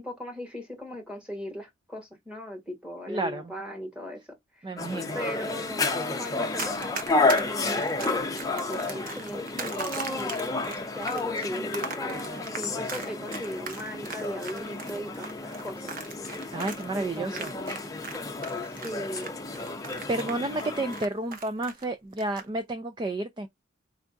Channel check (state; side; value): normal; both; correlation 0.30